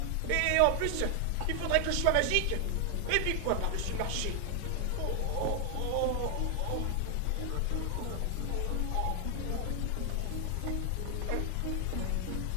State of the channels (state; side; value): different; both; correlation 0.00